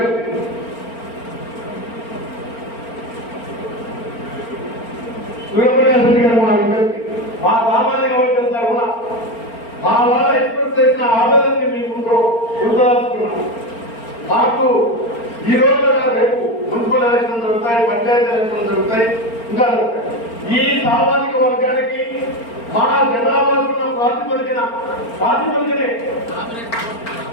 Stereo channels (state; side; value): late; right; 4.4 ms